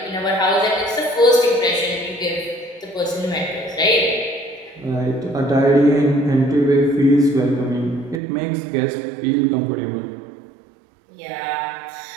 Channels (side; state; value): left; drops out; at 8.2 s